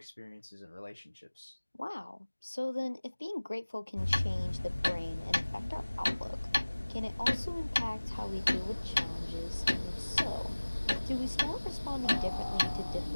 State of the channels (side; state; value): both; inverted; correlation -1.00